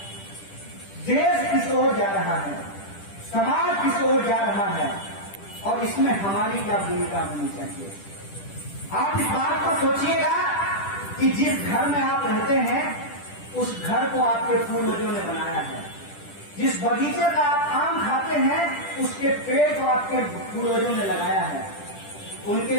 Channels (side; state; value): right; late; 10 ms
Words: देश किस ओर जा रहा है, समाज किस ओर जा रहा है, और इसमें हमारी क्या भूमिका होनी चाहिए। आप इस बात को सोचिएगा कि जिस घर में आप रहते हैं उस घर को आपके पूर्वजों ने बनाया है। जिस बगीचे का आप आम खाते हैं उसके पेड़ को आपके पूर्वजों ने लगाया है। उनके